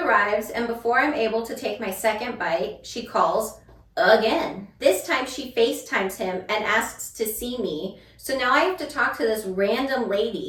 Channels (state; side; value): identical; both; correlation 1.00